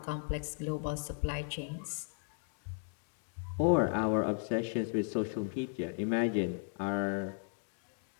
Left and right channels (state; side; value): silent; right; 54 dB below the other